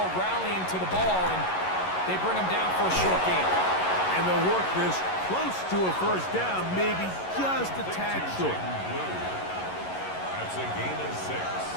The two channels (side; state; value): right; late; 11 ms